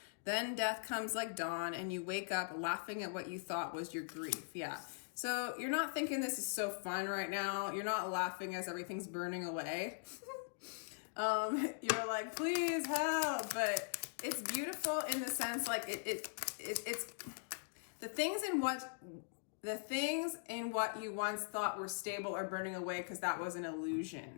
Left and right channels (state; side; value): silent; right; digital silence